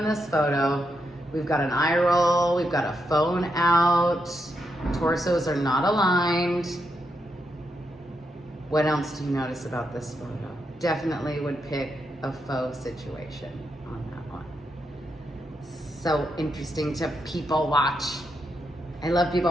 this photo. We've got an eye roll. We've got a phone out. Torsos are not aligned. What else do you notice about this photo? Definitely would pick a faux situation on that one. So interesting to people watch. I love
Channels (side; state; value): both; normal; correlation 0.82